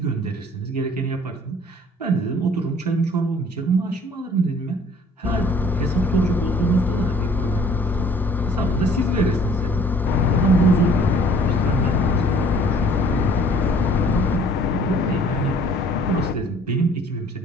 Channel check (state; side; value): normal; both; correlation 0.54